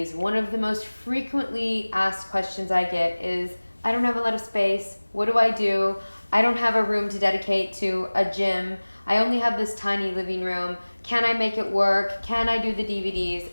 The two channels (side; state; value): both; inverted; correlation -1.00